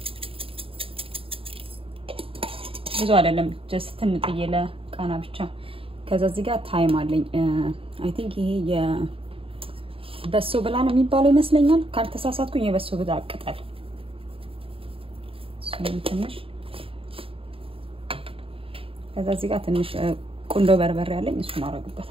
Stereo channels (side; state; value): left; late; 0.27 ms